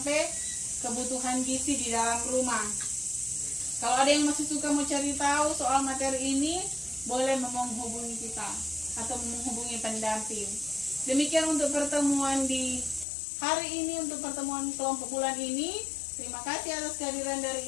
kebutuhan gizi di dalam rumah. Kalau ada yang masih suka mau cari tahu soal materi ini, boleh menghubungi kita atau menghubungi pendamping. Demikian untuk pertemuan di hari ini, untuk pertemuan kelompok bulan ini. Terima kasih atas kehadiran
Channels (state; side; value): drops out; right; at 13.1 s